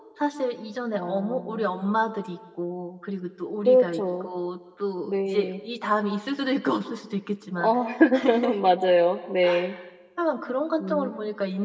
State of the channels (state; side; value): identical; both; correlation 1.00